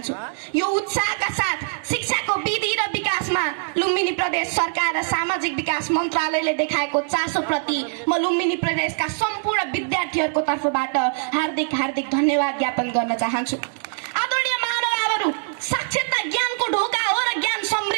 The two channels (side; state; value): left; silent; digital silence